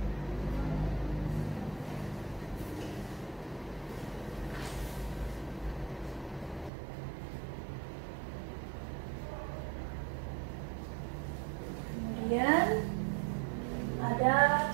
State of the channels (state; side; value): drops out; left; at 6.7 s